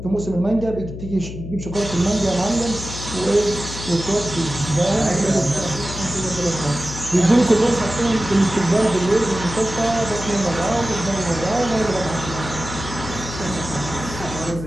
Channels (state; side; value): noise; left; hum, 9 dB below the sound